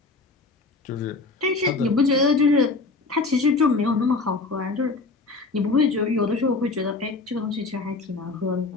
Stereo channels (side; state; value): right; quieter; 3.8 dB